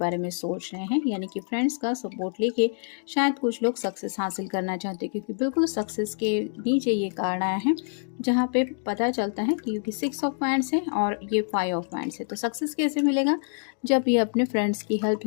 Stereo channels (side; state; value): right; silent; 61 dB below the other